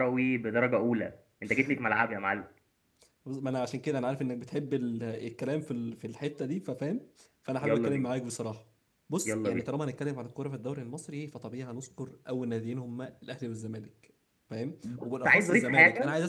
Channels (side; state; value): both; identical; correlation 1.00